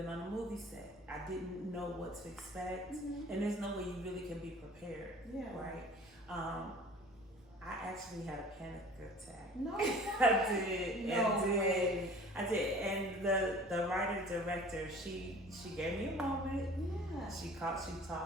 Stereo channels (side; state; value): both; normal; correlation 0.46